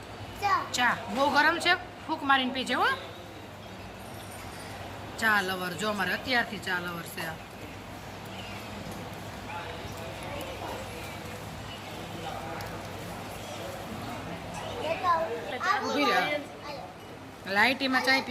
ચા. બહુ ગરમ છે, ફૂંક મારીને પીજે હો. ચા લવર જો અમારે અત્યારથી ચા લવર છે. લાઈટીમાં ચાય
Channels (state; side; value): identical; both; correlation 1.00